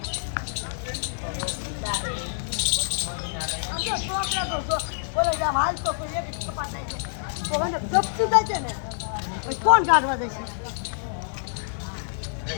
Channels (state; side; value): silent; right; digital silence